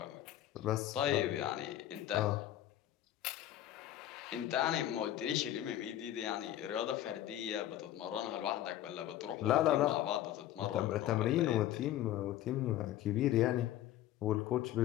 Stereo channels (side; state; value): right; quieter; 12.8 dB